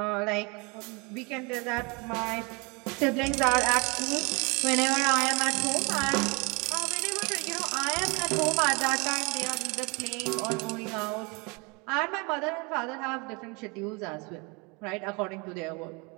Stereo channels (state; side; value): quieter; left; 29.3 dB